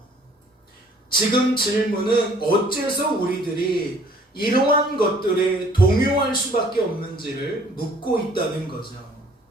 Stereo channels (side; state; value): both; normal; correlation 0.57